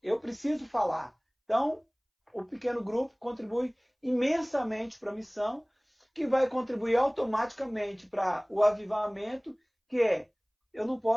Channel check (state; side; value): identical; both; correlation 1.00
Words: Eu preciso falar. Então, o pequeno grupo contribui imensamente para a missão, que vai contribuir automaticamente para o avivamento, que eu não